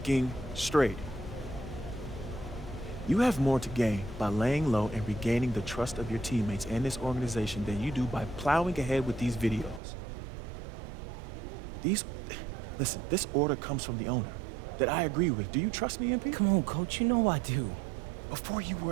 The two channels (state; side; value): drops out; left; at 9.8 s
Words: straight. You have more to gain by laying low and regaining the trust of your teammates and this organization than you do by plowing ahead with these videos. Listen, this order comes from the owner that I agree with. Do you trust me, MP? Come on, Coach, you know I do. Before you